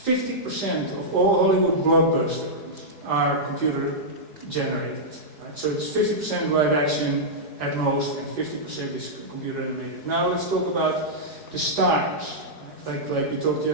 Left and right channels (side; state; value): left; late; 4.7 ms